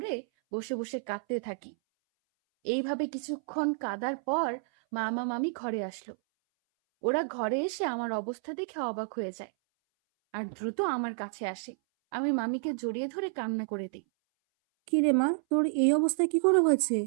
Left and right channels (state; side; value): silent; left; 58 dB below the other